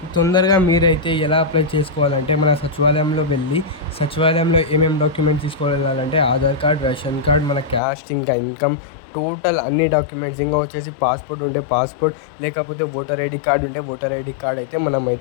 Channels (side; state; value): right; drops out; at 7.8 s